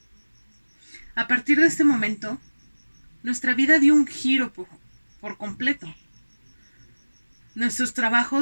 A partir de este momento, nuestra vida dio un giro por completo. Nuestros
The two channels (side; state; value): both; inverted; correlation -1.00